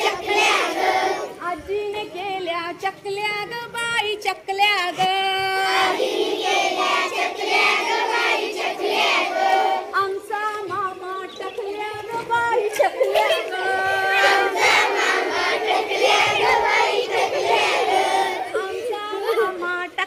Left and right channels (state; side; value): identical; both; correlation 1.00